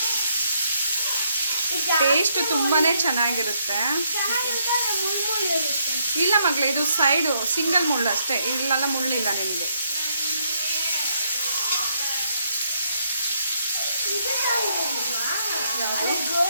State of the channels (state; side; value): inverted; both; correlation -0.73